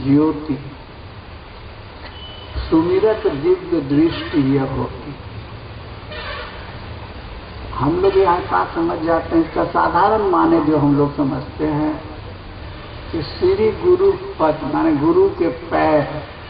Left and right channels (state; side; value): identical; both; correlation 1.00